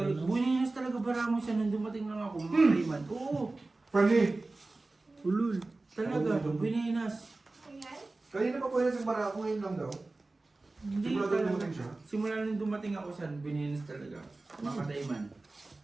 Buninas talaga baramo siya nung dumating lang ako. Mga man. Oo, Pali. Ulul. talaga. Buninas. Kanina pa pwede sa barako ngayon lang daw. Hindi Simula talaga. dumating siya? Simula nung dumating ako sa Buninas talaga. Makatay man.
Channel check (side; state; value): left; quieter; 3.2 dB